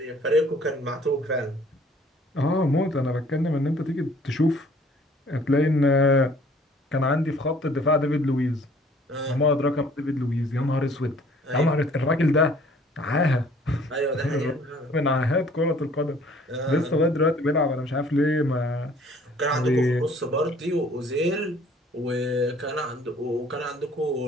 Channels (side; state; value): both; normal; correlation 0.56